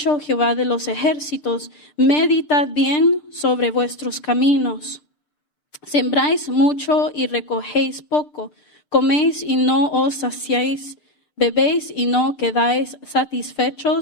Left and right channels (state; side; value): late; right; 6.1 ms